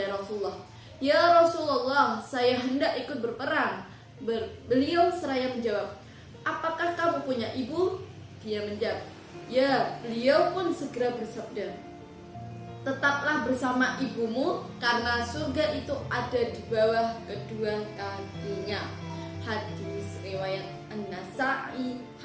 Rasulullah, ya Rasulullah, saya hendak ikut berperang. Beliau seraya menjawab, apakah kamu punya ibu? Dia menjawab, ya. Beliau pun segera bersabda, tetaplah bersama ibumu karena surga itu ada di bawah kedua kakinya. Hadis riwayat An-Nasa'i,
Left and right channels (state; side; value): identical; both; correlation 1.00